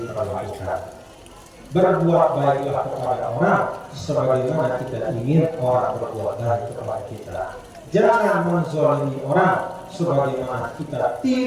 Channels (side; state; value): both; identical; correlation 1.00